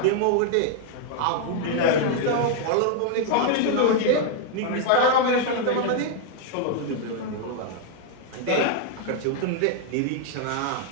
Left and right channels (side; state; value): both; different; correlation 0.00